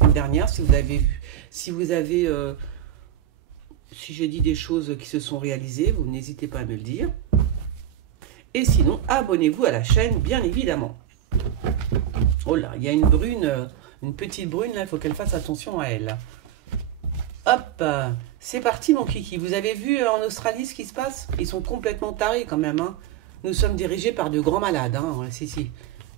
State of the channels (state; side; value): quieter; left; 10.8 dB